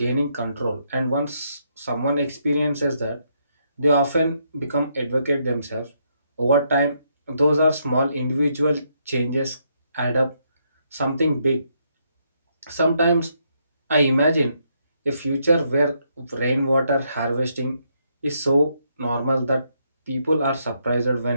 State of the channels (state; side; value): inverted; both; correlation -0.76